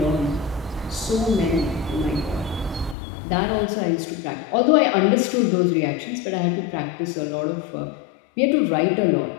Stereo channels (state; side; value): drops out; right; at 3.0 s